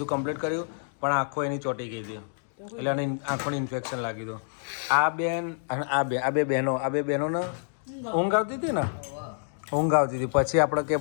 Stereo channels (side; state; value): right; silent; digital silence